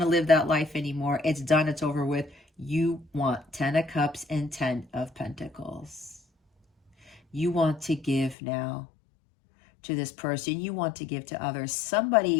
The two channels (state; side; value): drops out; right; at 8.3 s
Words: to live that life anymore. It's done. It's over with. You want 10 of Cups and 10 of Pentacles. You want to give now to this person. You want to give to others.